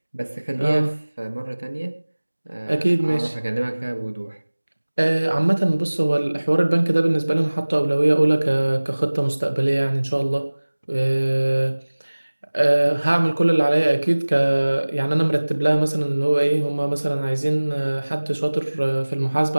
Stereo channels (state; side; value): inverted; both; correlation -1.00